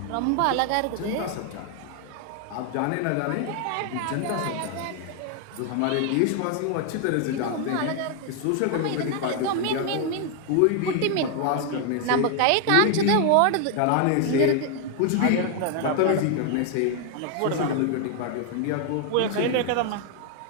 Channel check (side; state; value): both; different; correlation 0.00